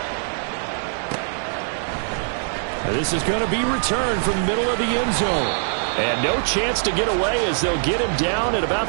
This is going to be returned from the middle of the end zone. And no chance to get away, as they'll get him down at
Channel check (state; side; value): silent; left; digital silence